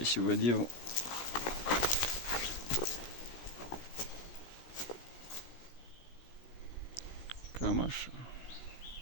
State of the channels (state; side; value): late; right; 16 ms